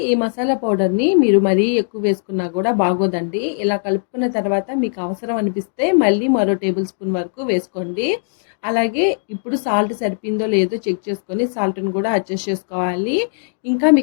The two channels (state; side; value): silent; right; digital silence